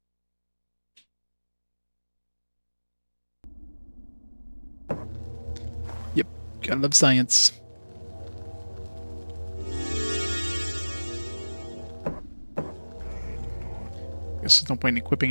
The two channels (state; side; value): inverted; both; correlation -1.00